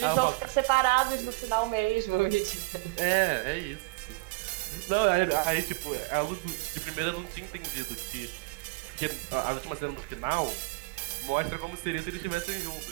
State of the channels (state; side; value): quieter; left; 24.9 dB